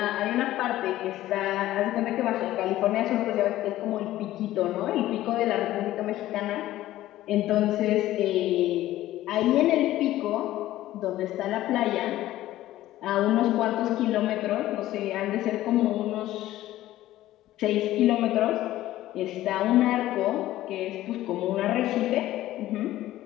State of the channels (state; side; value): quieter; right; 14.8 dB